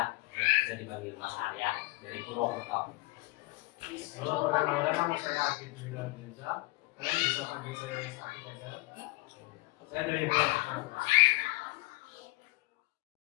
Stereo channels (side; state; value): right; quieter; 22.3 dB